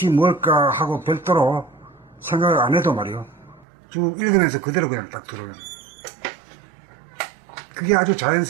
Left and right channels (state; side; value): drops out; left; at 3.7 s